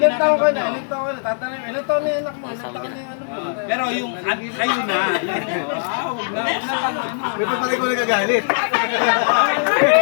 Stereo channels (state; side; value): silent; right; digital silence